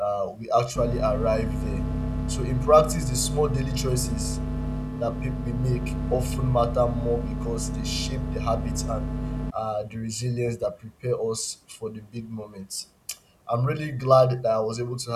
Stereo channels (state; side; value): identical; both; correlation 1.00